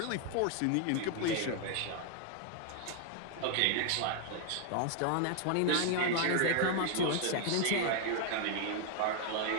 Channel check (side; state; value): both; different; correlation 0.00